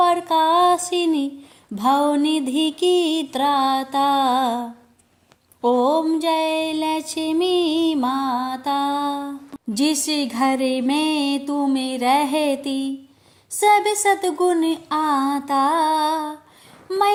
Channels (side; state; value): both; identical; correlation 1.00